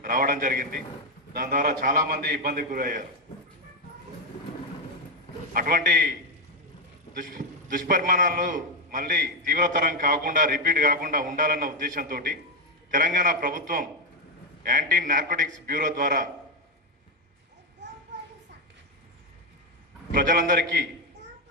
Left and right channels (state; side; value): normal; both; correlation 0.06